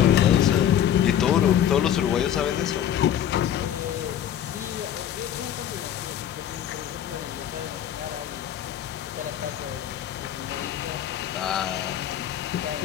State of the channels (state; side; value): quieter; right; 10.2 dB